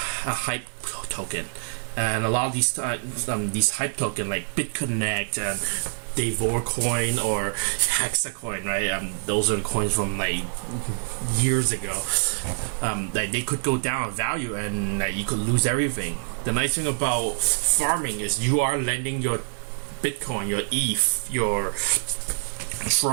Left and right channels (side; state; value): left; silent; 61 dB below the other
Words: hype token, and a lot of these hype token like BitConnect and Coin or Hexacoin, right? Those are the coins from like years ago. Like they could go down in value, and you could lose everything. The nice thing about farming is you are lending your Bitcoin, your ETH, your